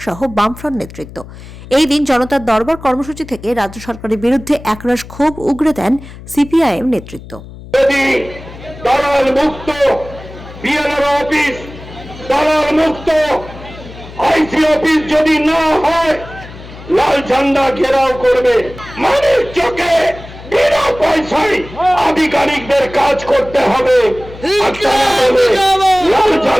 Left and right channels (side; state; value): left; noise; hum, 16 dB below the sound